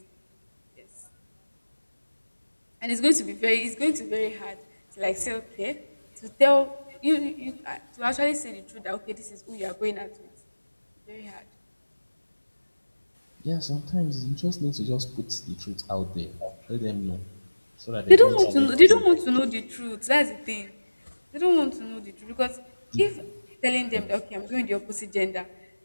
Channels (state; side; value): inverted; both; correlation -1.00